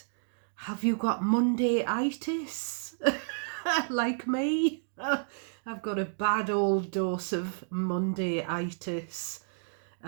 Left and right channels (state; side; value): silent; left; digital silence